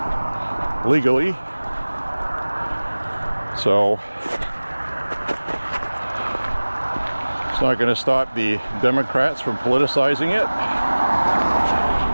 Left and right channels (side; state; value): both; inverted; correlation -1.00